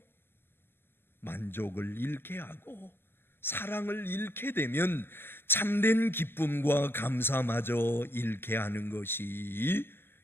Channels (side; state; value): right; late; 0.11 ms